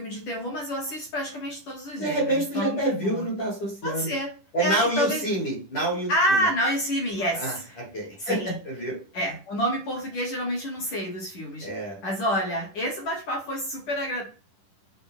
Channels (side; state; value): right; late; 10 ms